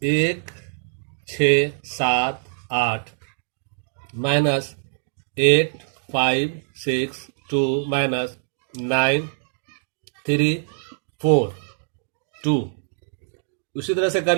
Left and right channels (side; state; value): left; silent; digital silence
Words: 1 6 7 8 माइनस 8 5 6 2 माइनस 9 3 4 2। उसी तरह से कर